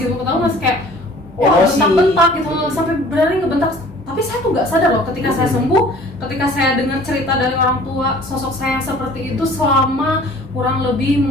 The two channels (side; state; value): both; normal; correlation 0.50